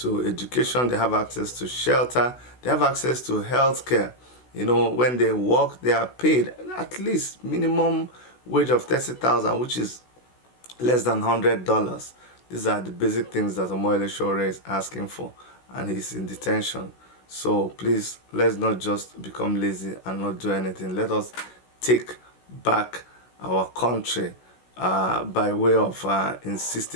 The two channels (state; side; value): late; right; 16 ms